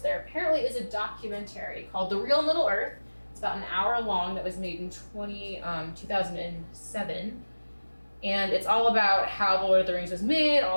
apparently is a documentary called The Real Middle Earth. It's about an hour long that was made in 2007. And it's all about how The Lord of the Rings was made,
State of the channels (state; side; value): inverted; both; correlation -1.00